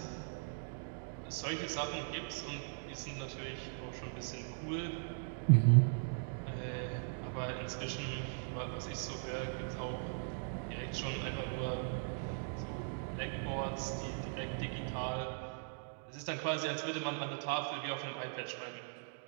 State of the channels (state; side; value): silent; left; digital silence